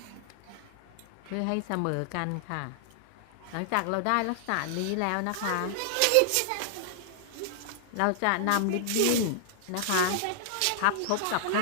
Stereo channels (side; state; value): both; different; correlation -0.01